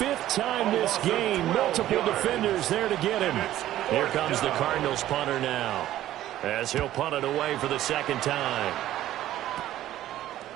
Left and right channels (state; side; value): quieter; left; 13.5 dB